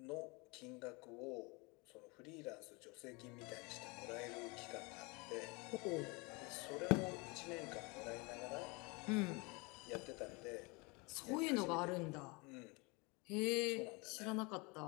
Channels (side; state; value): right; quieter; 28.0 dB